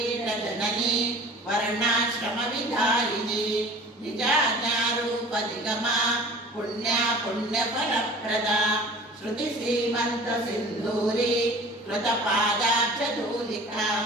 वर्णाश्रमविधायिनी निजाज्ञारूपनिगमा पुण्या पुण्यफलप्रदा श्रुतिसीमन्तसिन्धूरी कृतपादाब्जधूलिका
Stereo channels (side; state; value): both; normal; correlation 0.43